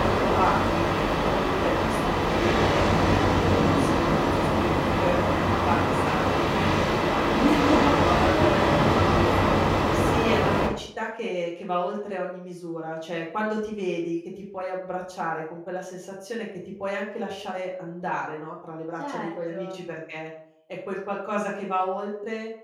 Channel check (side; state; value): both; identical; correlation 1.00